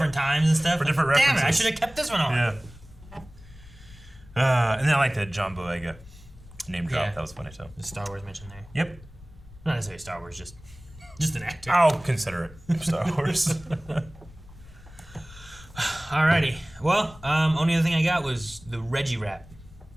times and stuff? For different references. Damn it, I should have kept this one on. Yeah. And then I like that John Boyega name drop. Yeah. That was funny, too. The Star Wars mention there. Yep. Not necessarily Star Wars, just an actor. I'll consider it Star Wars. Alrighty. Well, only other thing I got was the Reggie rap.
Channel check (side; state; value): left; noise; rumble, 20 dB below the sound